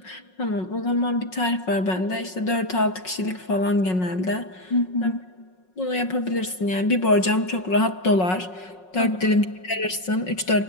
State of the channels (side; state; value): right; late; 5.5 ms